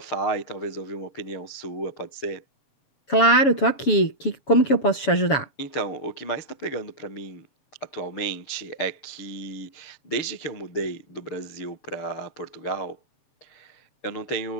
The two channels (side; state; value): right; late; 7.1 ms